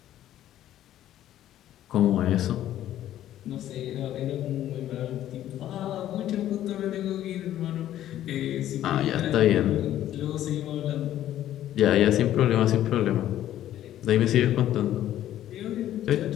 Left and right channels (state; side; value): quieter; right; 12.4 dB